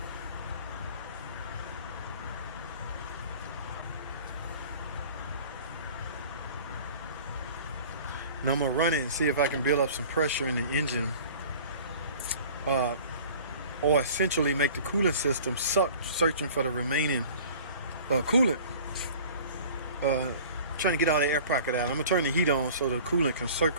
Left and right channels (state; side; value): inverted; both; correlation -0.44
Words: Now I'm gonna run it and see if I can build up some pressure in the engine, or essentially make the coolant system suck, searching for the remaining coolant. Trying to get all the air pocket out. I'm gonna turn the heat on so the coolant can